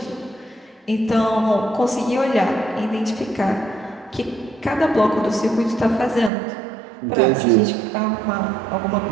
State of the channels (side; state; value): left; drops out; at 6.3 s